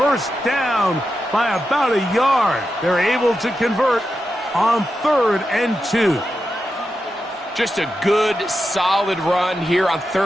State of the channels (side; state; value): both; normal; correlation 0.89